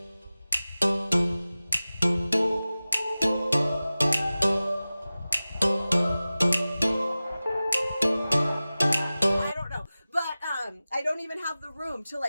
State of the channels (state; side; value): inverted; both; correlation -0.97